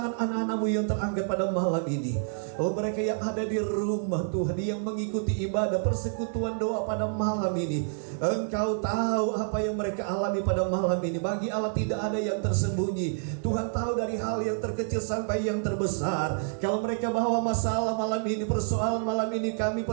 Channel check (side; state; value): left; silent; digital silence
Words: anak-anakmu yang terangkat pada malam ini. Oh, mereka yang ada di rumah Tuhan, yang mengikuti ibadah persekutuan doa pada malam ini. Engkau tahu apa yang mereka alami pada malam ini. Bagi Allah tidak ada yang tersembunyi. Tuhan tahu dari hal yang terkecil sampai yang terbesar. Kalau mereka bawa masalah malam ini, persoalan malam ini, kami